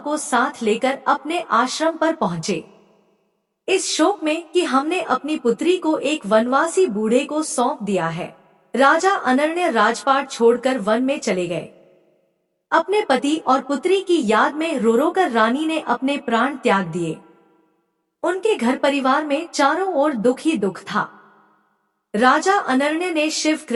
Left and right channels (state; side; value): identical; both; correlation 1.00